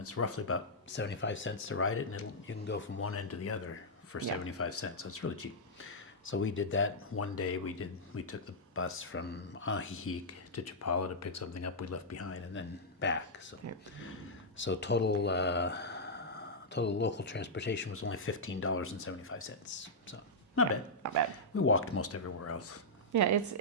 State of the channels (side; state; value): both; normal; correlation -0.09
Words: roughly about 75 cents to ride it, and you can go from one end to the other for 75 cents. So it's really cheap. So we did that one day. We took the bus from Ajijic to Chapala to pick something up we left behind, and then back. So total local transportation was only $15.75. So not bad. Not bad. We walked most everywhere else. Yeah,